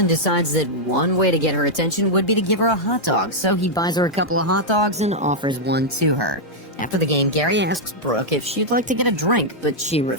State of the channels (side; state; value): both; normal; correlation -0.05